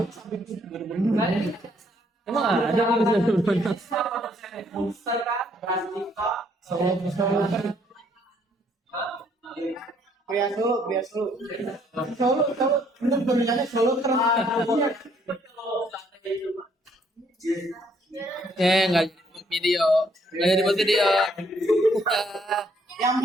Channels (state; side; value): normal; both; correlation 0.67